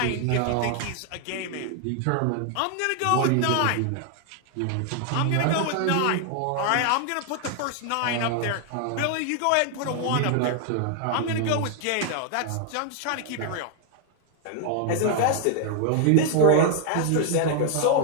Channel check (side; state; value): both; different; correlation 0.00